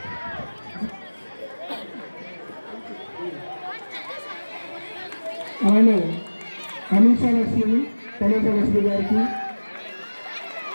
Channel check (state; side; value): inverted; both; correlation -1.00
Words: అలానే అనీషా లక్ష్మి లక్ష్మి గారికి,